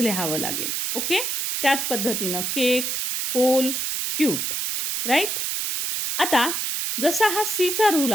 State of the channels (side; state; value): right; noise; hiss, 1 dB below the sound